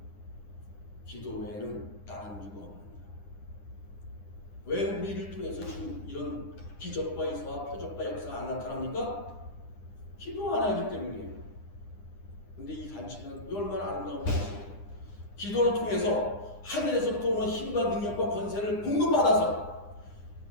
기도 외에는 다른 이유가 없습니다. 왜 우리를 통해서 지금 이런 기적과 이사와 표적과 역사가 안 나타납니까? 기도 안 하기 때문이에요. 근데 이 단체는 얼마나 아름다운 단체예요. 기도를 통해서 하늘에서부터 오는 힘과 능력과 권세를 공급받아서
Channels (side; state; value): right; late; 9.9 ms